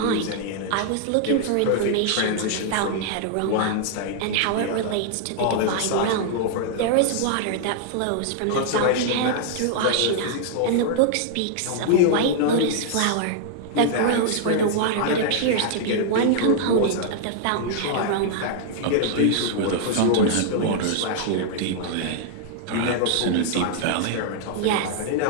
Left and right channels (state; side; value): different; both; correlation -0.01